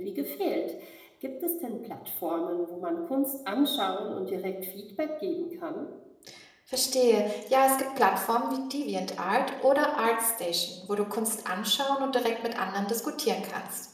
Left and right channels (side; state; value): both; identical; correlation 1.00